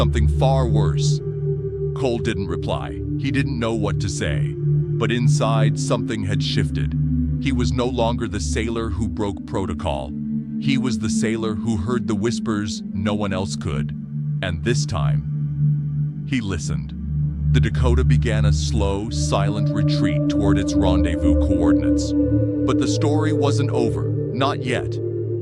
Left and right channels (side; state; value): both; identical; correlation 1.00